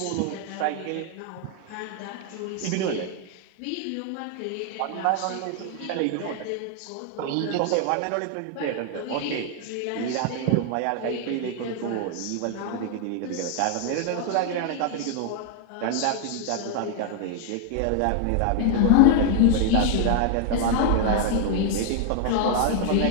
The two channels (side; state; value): both; different; correlation 0.00